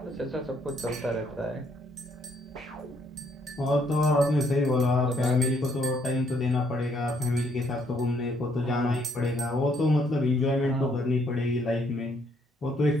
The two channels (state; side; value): normal; both; correlation 0.69